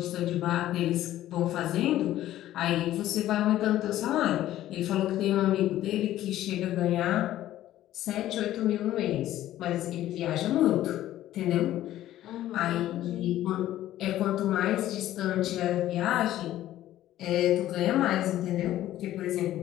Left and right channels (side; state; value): right; quieter; 13.6 dB